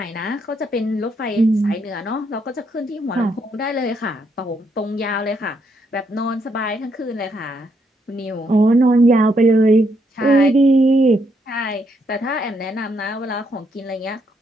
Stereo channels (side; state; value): both; normal; correlation 0.76